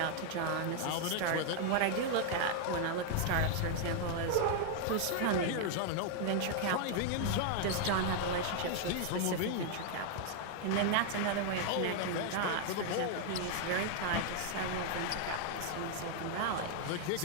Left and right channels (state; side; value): different; both; correlation 0.00